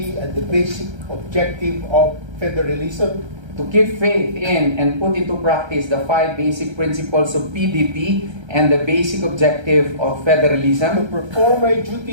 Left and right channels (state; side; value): late; left; 1.3 ms